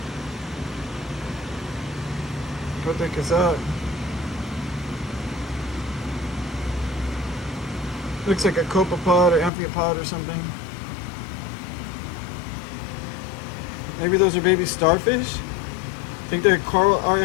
What the heck is that? Looks like a copepod or amphipod or something. Maybe those are baby starfish? Think their coral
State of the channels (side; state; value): right; drops out; at 9.5 s